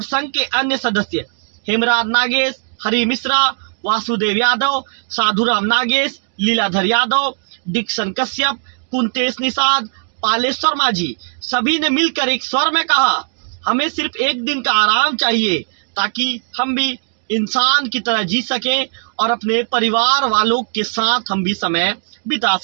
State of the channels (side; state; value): left; silent; 60 dB below the other